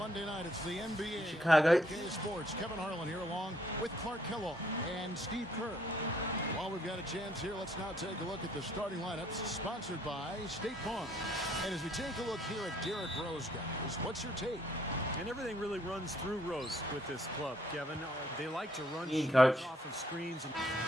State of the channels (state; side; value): normal; both; correlation 0.66